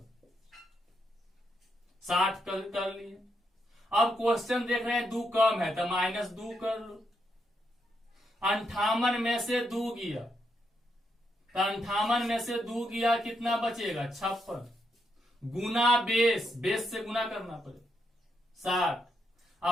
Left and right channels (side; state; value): both; normal; correlation 0.80